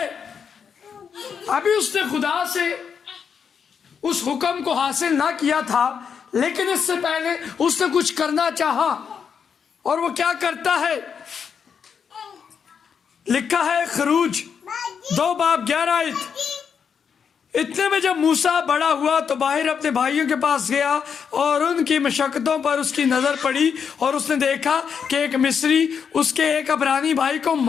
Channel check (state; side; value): quieter; right; 6.9 dB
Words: ابھی اس نے خدا سے اس حکم کو حاصل نہ کیا تھا, لیکن اس سے پہلے اس نے کچھ کرنا چاہا. اور وہ کیا کرتا ہے؟ لکھا ہے خروج 2:11. اتنے میں جب موسیٰ بڑا ہوا تو باہر اپنے بھائیوں کے پاس گیا اور ان کی مشقتوں پر اس کی نظر پڑی, اور اس نے دیکھا کہ ایک مصری اس کے ایک عبرانی بھائی کو